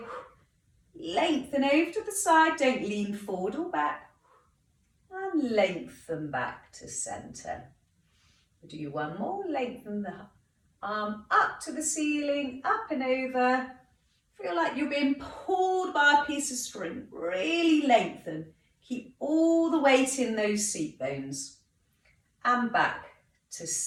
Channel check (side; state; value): both; identical; correlation 1.00